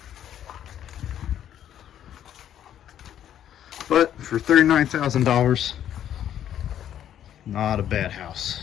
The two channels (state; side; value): quieter; right; 10.5 dB